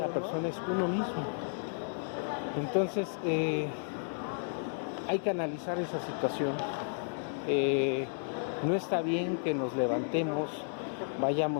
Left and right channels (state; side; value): silent; right; digital silence